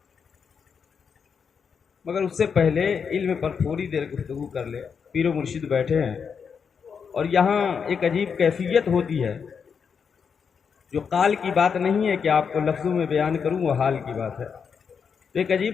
مگر اس سے پہلے علم پر تھوڑی دیر گفتگو کر لے۔ پیر و مرشد بیٹھے ہیں، اور یہاں ایک عجیب کیفیت ہوتی ہے جو قال کی بات نہیں ہے کہ آپ کو لفظوں میں بیان کروں، وہ حال کی بات ہے۔ تو ایک عجیب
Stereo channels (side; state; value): right; quieter; 6.4 dB